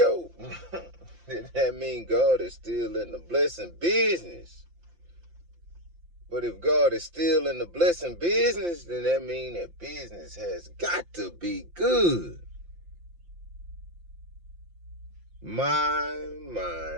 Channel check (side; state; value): left; late; 5.8 ms